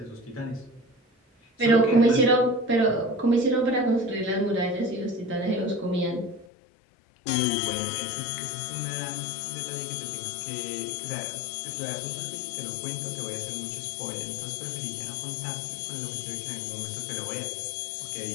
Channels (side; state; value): right; drops out; at 6.5 s